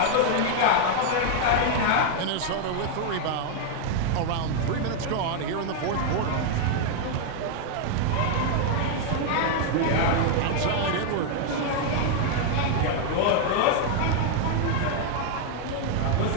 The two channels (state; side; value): different; both; correlation 0.00